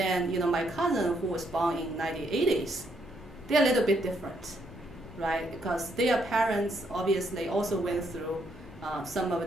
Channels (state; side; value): normal; both; correlation 0.73